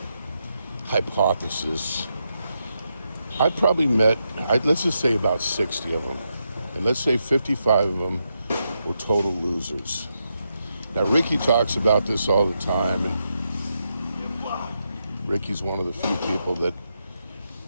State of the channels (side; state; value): both; inverted; correlation -0.84